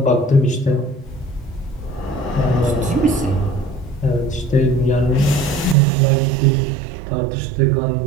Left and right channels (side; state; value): left; drops out; at 5.8 s